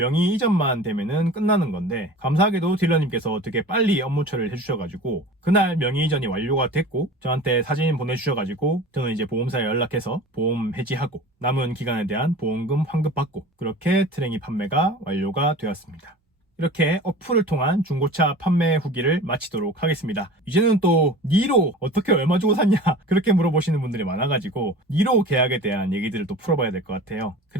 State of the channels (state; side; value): normal; both; correlation 0.38